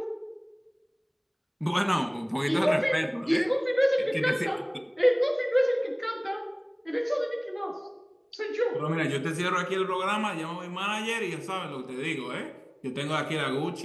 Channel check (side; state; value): both; identical; correlation 1.00